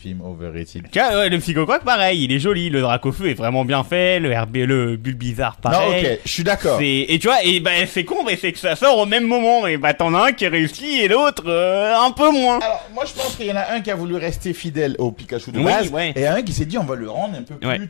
overrated. Tu vois, ouais, le Psychocroc, pareil, il est joli, le Dracofeu est vraiment bien fait, le Bulbizarre, Non, pareil. ok, je suis d'accord. Et tu vois, et bah c'est con, mais c'est que ça sort au même moment, et bah t'en as un qui réussit et l'autre un peu moins. Alors, moi, je pense qu'il y en a un qui a voulu rester fidèle au Pikachu de Oui, base, ouais. et un qui s'est dit, on va le rendre un peu plus, Ouais.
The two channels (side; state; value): right; silent; 65 dB below the other